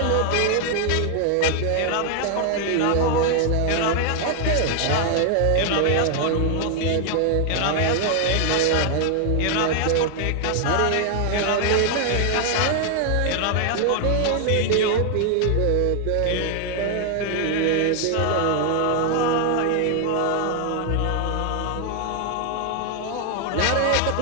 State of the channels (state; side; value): different; both; correlation 0.00